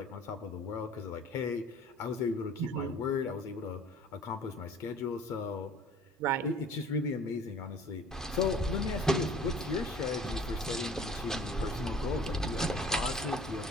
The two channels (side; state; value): both; normal; correlation 0.49